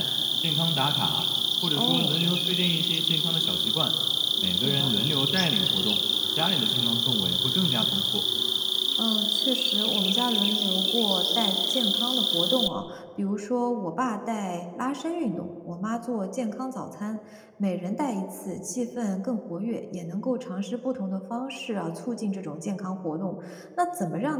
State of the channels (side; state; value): both; identical; correlation 1.00